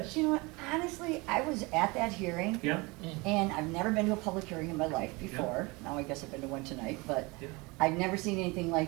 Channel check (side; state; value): left; quieter; 25.5 dB